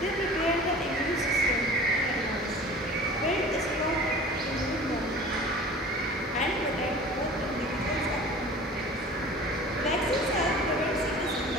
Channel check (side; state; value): both; normal; correlation 0.42